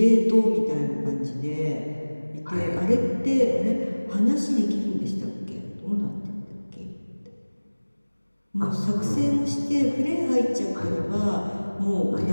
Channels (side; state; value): both; inverted; correlation -1.00